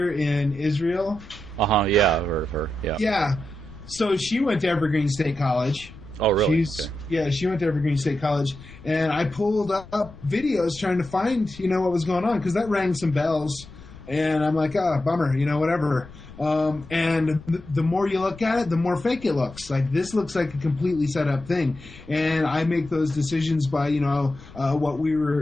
in Israel. Yeah, I've heard of her. Yeah. Yeah. So she went to Evergreen State College. Oh, really? Yeah, she went to Evergreen State College. And I pulled up videos trying to find, what was going on, because that rang some bells. And I'm like, bummer, whatever. And the more you look at it, the more fake it looks. Like, this looks like a completely set up thing. And I make those decisions by, what we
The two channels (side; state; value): left; noise; rumble, 18 dB below the sound